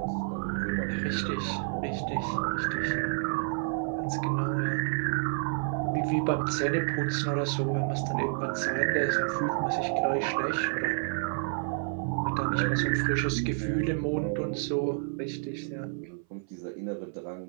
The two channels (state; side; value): silent; left; 57 dB below the other